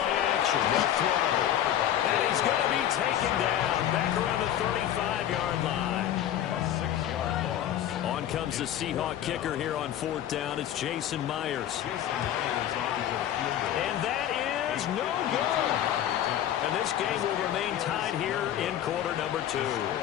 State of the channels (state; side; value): quieter; right; 11.2 dB